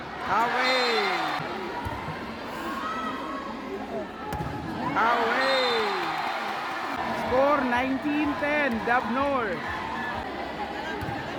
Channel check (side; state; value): both; identical; correlation 1.00